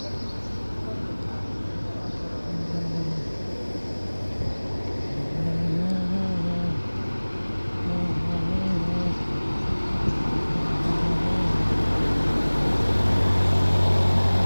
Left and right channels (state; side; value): inverted; both; correlation -1.00